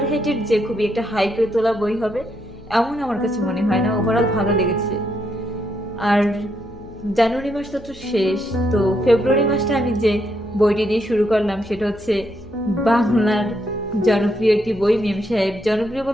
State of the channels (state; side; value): noise; left; hum, 22 dB below the sound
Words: যে খুবই একটা হাইপে তোলা বই হবে এমন আমার কাছে মনে হয় না। ওভারঅল ভালো লেগেছে। আর জানুয়ারি মাস তো শেষ, তো ফেব্রুয়ারি মাসটা আমি যে বইটি দিয়ে শুরু করলাম সেটা বাংলার জনপ্রিয় একটি বই, মেম সাহেব। জনপ্রিয়